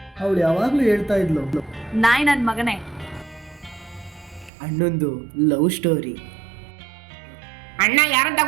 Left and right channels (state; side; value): drops out; left; at 4.5 s